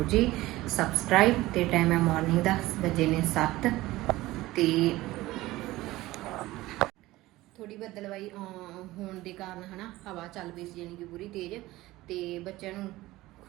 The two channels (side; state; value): left; quieter; 17.9 dB